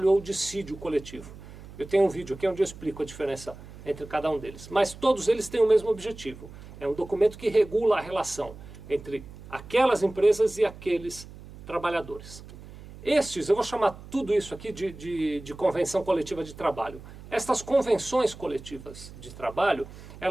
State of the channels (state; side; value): noise; right; hum, 16 dB below the sound